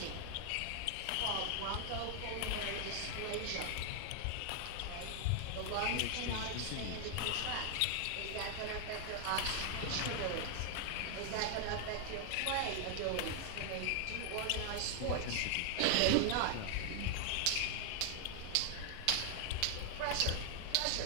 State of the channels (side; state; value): both; different; correlation 0.00